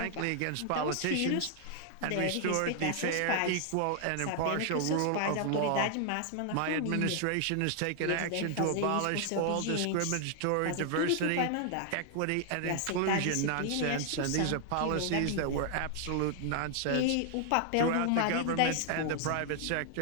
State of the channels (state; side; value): different; both; correlation 0.00